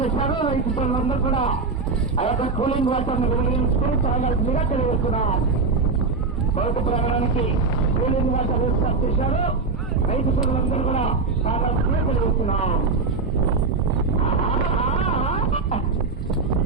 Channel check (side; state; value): left; quieter; 4.3 dB